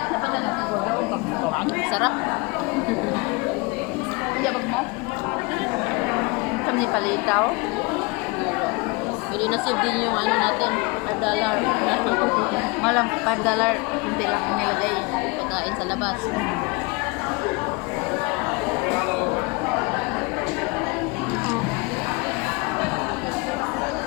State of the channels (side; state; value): right; quieter; 27.3 dB